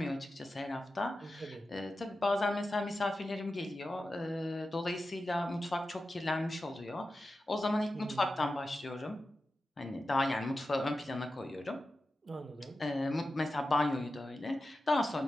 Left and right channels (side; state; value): both; normal; correlation 0.92